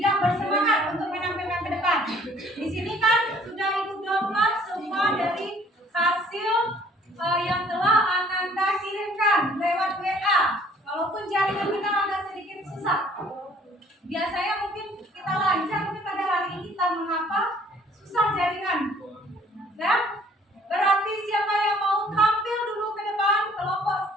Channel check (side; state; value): both; normal; correlation 0.57